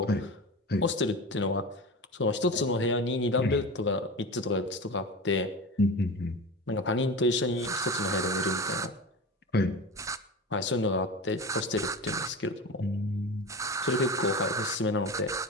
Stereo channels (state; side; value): normal; both; correlation 0.28